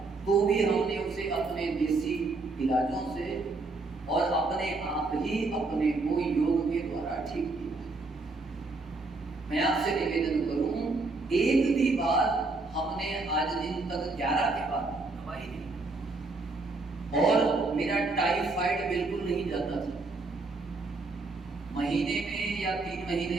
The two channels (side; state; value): left; quieter; 3.5 dB